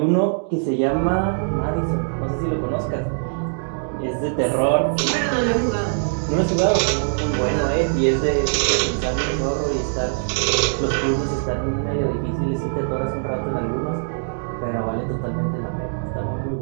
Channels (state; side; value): silent; left; digital silence